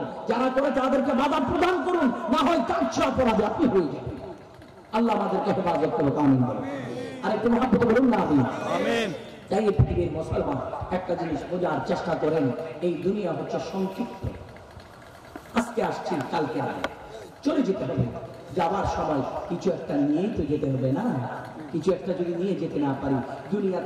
যারা করে তাদেরকে বাধা প্রদান করুন, না হয় তার চেয়ে অপরাধী আপনি হয়ে যাবেন। আল্লাহ আমাদেরকে হেফাজত করুক, আমিন বলুন। আর একটু মহাব্বত বলুন না, আমিন। তাই পৃথিবীর মুসলমান একটা জিনিস বোঝার চেষ্টা করেন, এই দুনিয়া হচ্ছে সংক্ষিপ্ত। আজকে আসছি, কালকে চলে যেতে হবে। যাবার সময় কিছু একটা নিয়েই তো যেতে হবে না? কিছু একটা যদি নিয়ে যেতে না পারি,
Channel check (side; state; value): both; identical; correlation 1.00